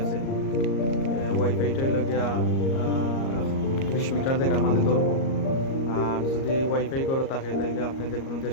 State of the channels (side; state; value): right; late; 38 ms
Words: আছে। ওয়াইফাইটা হইল গিয়া 20 মিটার জায়গার মাঝে ধরবো। আর যদি ওয়াইফাই করো থাকে তাইলে আপনি যে কোনো